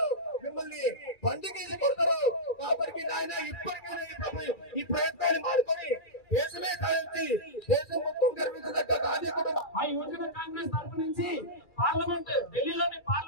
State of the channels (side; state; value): right; late; 2.3 ms